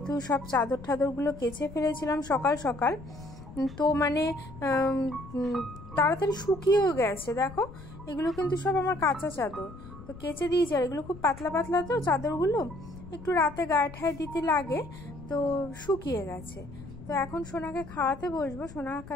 সব চাদর ঠাদরগুলো কেচে ফেলেছিলাম সকাল সকাল, তো তাড়াতাড়ি শুকিয়েও গেছে। দেখো, এগুলো কিন্তু সব আমার কাঁচা চাদর, তো কেচে দিয়েছি। আর এগুলো খুব পাতলা পাতলা, তো চাদরগুলো একটু রাতে গায়ে ঠায়ে দিতে লাগে, তো শুকিয়ে গেছে। তো এখন সোনাকে খাওয়াতে বসবো। সোনাকে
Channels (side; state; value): left; noise; rumble, 15 dB below the sound